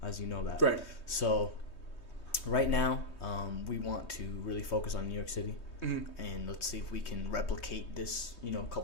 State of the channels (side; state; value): right; late; 3.2 ms